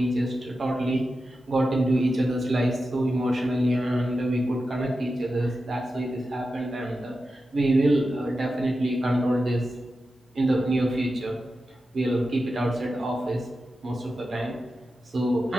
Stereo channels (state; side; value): normal; both; correlation 0.91